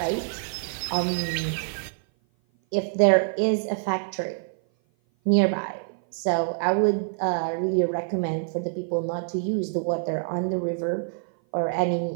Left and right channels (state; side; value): silent; left; 56 dB below the other